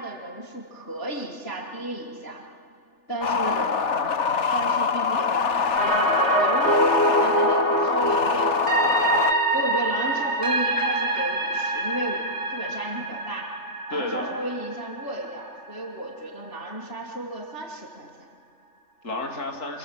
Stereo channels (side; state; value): right; late; 3.4 ms